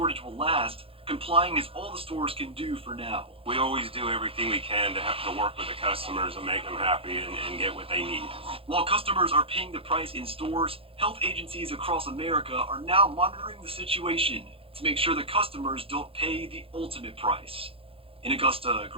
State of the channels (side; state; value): left; late; 0.27 ms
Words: will last, complying is all the stores can do for now. We always do everything we can to have to work with the customers and make them happy and get what they need. While customers are paying the price in stores, health agencies across America are now monitoring the situation to make sure the customers don't pay the ultimate price. In Augusta,